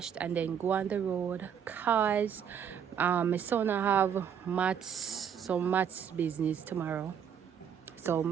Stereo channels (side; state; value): left; quieter; 8.2 dB